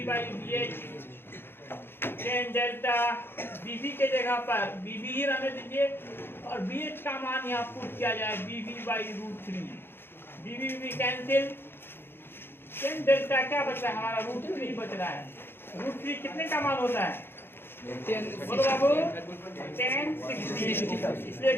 by BH। Tan delta BV के जगह पर BV ही रहने दीजिए और BH का मान यहाँ पुट किया जाए BV by √3। BV cancel, tan delta क्या बचा है हमारा? √3 बच रहा है। √3 कितने का मान होता है? बोलो बाबू, 10 60। इसलिए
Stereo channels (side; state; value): right; late; 0.11 ms